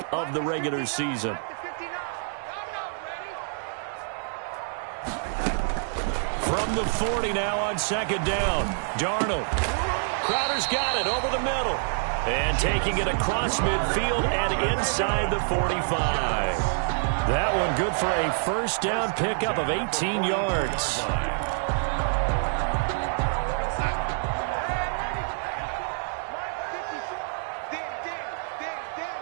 of the regular season. From the 40 now on second down. Darnold. Crowder's got it over the middle. And taking it across midfield and inside the 45. That one good for a first down pickup of 18 yards.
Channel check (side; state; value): left; silent; 60 dB below the other